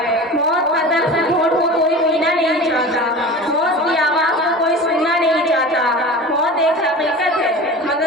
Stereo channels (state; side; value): normal; both; correlation 0.34